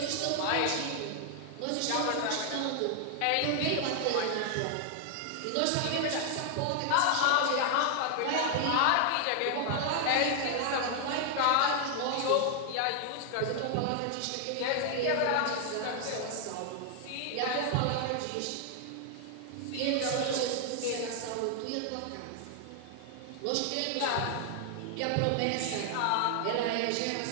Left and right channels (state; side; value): different; both; correlation 0.00